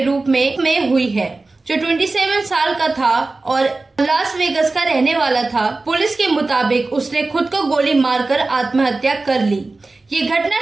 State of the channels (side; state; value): left; quieter; 3.4 dB